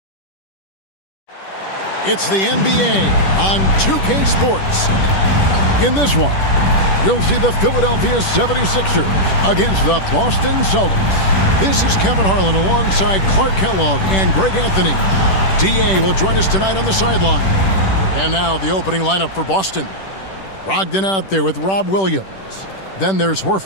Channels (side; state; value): right; late; 10 ms